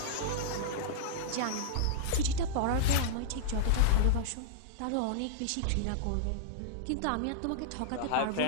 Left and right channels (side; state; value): both; different; correlation -0.02